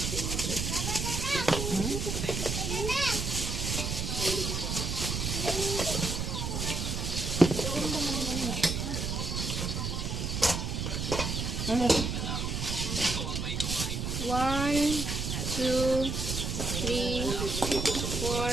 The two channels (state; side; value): noise; right; rumble, 2 dB below the sound